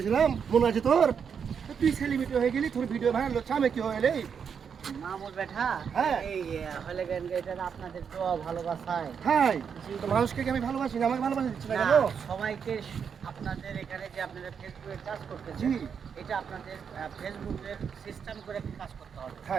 মনে আছে তোর? তুই সেলিব্রিটি হয়ে গেলি, তোর ভিডিও ভাইরাল হচ্ছে, আমি কি হইলে মামুর বেটা হ্যাঁ এই হলে গান এটা আপনাদের তো ভালোবাসায় হাই তো মানুষকে কি আমি ভালোবাসি না? আমাকে ভালোবাসা দিচ্ছি না না, কেন? সবাইকে আপনাদের এখানে যে আপনারা ফেসবুকে কাজ করতেছেন জি এটা আপনাদের ফেসবুকের সিস্টেম করে কাজ করতে হবে।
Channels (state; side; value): quieter; left; 6.9 dB